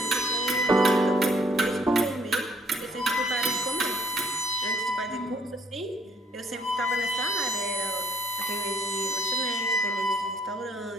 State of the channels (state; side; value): normal; both; correlation 0.64